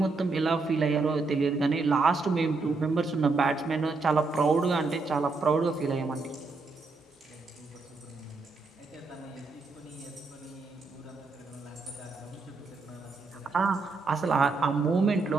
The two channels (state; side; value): quieter; left; 3.9 dB